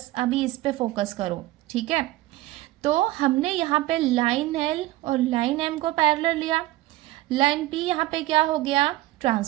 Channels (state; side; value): quieter; left; 16.8 dB